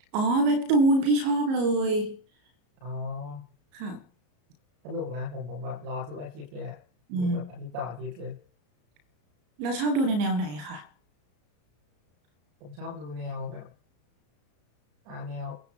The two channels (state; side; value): late; left; 34 ms